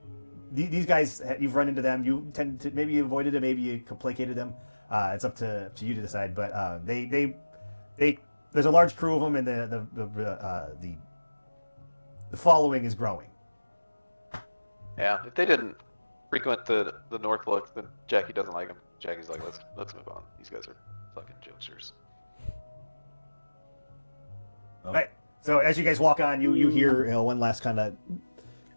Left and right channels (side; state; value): both; inverted; correlation -1.00